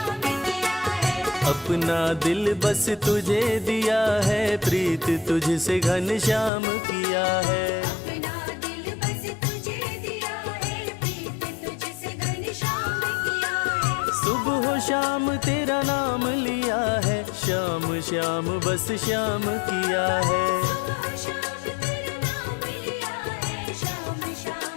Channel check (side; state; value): right; drops out; at 6.5 s